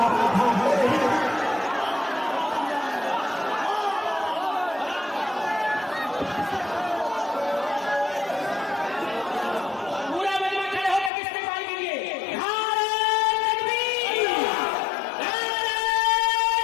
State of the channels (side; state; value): right; drops out; at 11.1 s